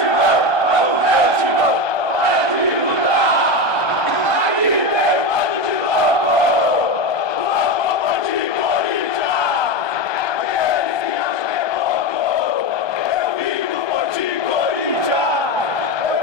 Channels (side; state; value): right; late; 1.2 ms